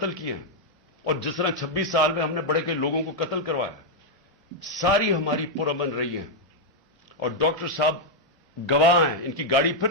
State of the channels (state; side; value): normal; both; correlation -0.02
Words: کیے ہیں، اور جس طرح 26 سال میں ہم نے بڑے کئی لوگوں کو قتل کروایا، ساری ہماری پرامن رہی ہیں. اور ڈاکٹر صاحب گواہ ہیں، ان کی گاڑی پھر